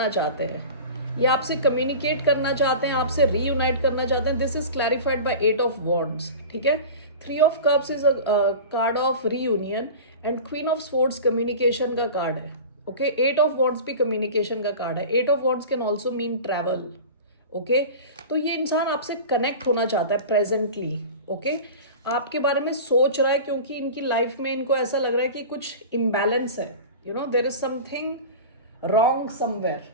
चाहते हैं, ये आपसे कम्युनिकेट करना चाहते हैं, आपसे रीयूनाइट करना चाहते हैं। This is clarified by 8 of wands, ठीक है। Three of cups is a card of reunion and queen of swords communication का कार्ड है. ओके, एट ऑफ वॉन्ड्स भी कम्युनिकेशन का कार्ड है. Eight of wands can also mean travel. Okay, तो ये इंसान आपसे कनेक्ट होना चाहता है प्रेजेंटली. ओके, आपके बारे में सोच रहा है क्योंकि इनकी लाइफ में इनको ऐसा लग रहा है कि कुछ इम्बैलेंस है. You know, there is something wrong somewhere.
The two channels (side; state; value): both; inverted; correlation -0.34